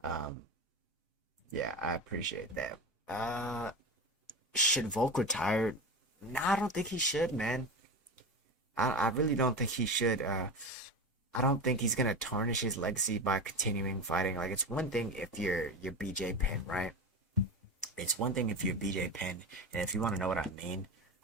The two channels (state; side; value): normal; both; correlation 0.24